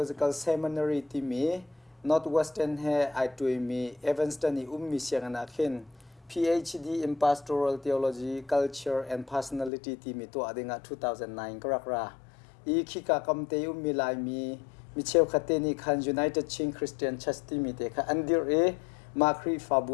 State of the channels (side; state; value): right; drops out; at 9.7 s